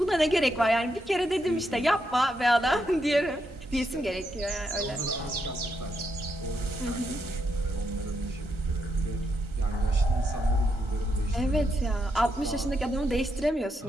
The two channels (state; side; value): normal; both; correlation 0.80